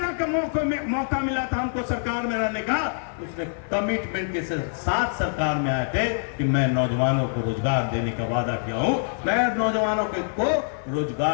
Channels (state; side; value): silent; right; 59 dB below the other